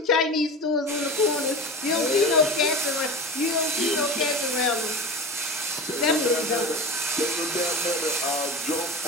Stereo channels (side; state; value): both; normal; correlation 0.30